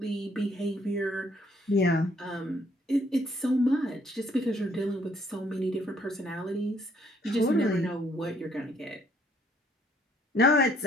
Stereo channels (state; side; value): normal; both; correlation 0.65